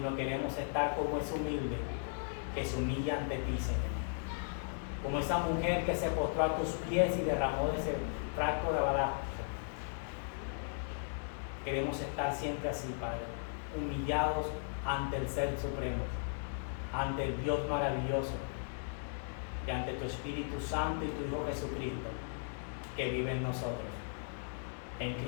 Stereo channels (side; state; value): right; silent; digital silence